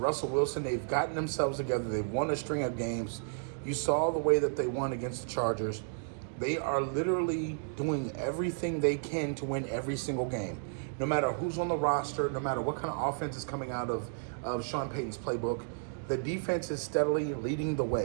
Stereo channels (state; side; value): silent; left; digital silence